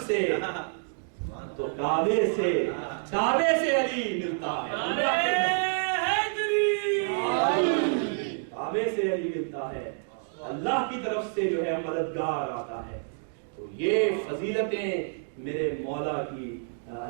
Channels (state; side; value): silent; left; 59 dB below the other